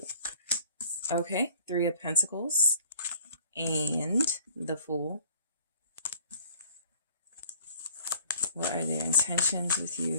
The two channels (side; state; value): both; inverted; correlation -0.53